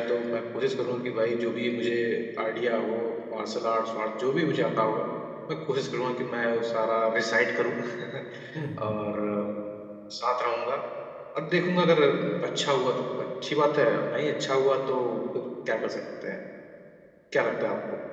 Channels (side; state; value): both; identical; correlation 1.00